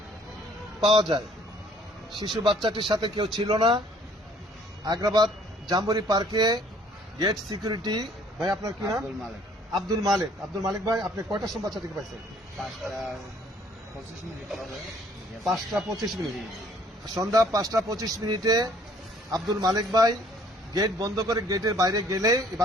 পাওয়া যায়। শিশু বাচ্চাটির সাথে কেউ ছিল না। আগ্রাবাদ জাম্বুরি পার্কে গেট সিকিউরিটি ভাই, আপনার কি নাম? আব্দুল মালিক। আব্দুল মালিক ভাই, আপনি কয়টার সময় বাচ্চাটিকে পাইছেন? 5:25 মিনিট। সন্ধ্যা 5:25 মিনিটে আব্দুল মালিক ভাই গেট বন্ধ করে গেটের বাইরে গেলে এই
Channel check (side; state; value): both; normal; correlation 0.59